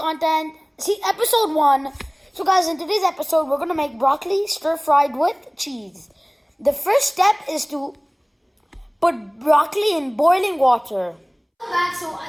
see episode 1. So guys, in today's episode, we're gonna make broccoli stir-fried with cheese. The first step is to put broccoli in boiling water. Back, so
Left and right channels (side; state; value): both; identical; correlation 1.00